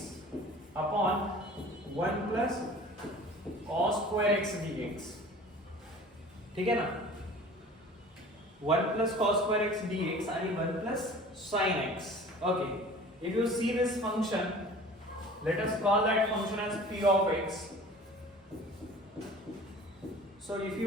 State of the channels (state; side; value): normal; both; correlation 0.44